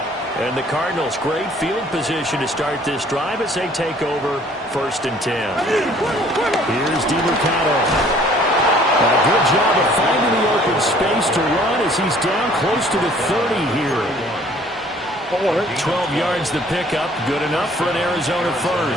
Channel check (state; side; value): normal; both; correlation 0.56